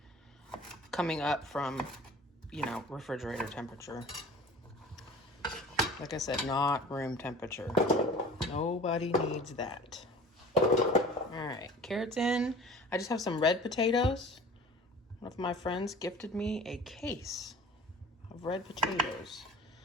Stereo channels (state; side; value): normal; both; correlation 0.43